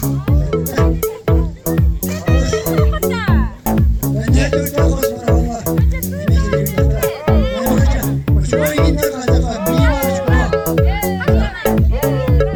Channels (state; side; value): identical; both; correlation 1.00